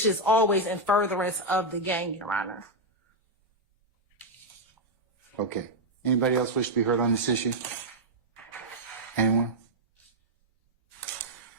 is always in furtherance of the gang, Your Honor. Okay. Anybody else wish to be heard on this issue? Anyone?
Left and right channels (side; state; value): both; normal; correlation -0.01